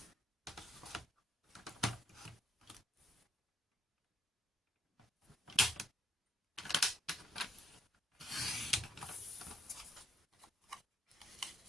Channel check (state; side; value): normal; both; correlation 0.72